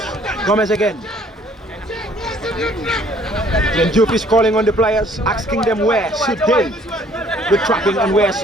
Gomez again. Yundum is calling on the players, asking them where should they be tracking and where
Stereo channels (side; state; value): both; normal; correlation 0.59